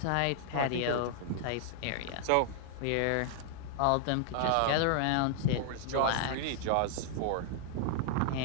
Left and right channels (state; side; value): different; both; correlation -0.01